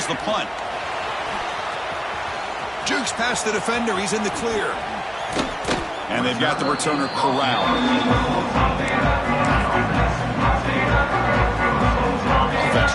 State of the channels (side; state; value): both; identical; correlation 1.00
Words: the punt. Jukes past the defender. He's in the clear. And they've got the returner corralled. Offense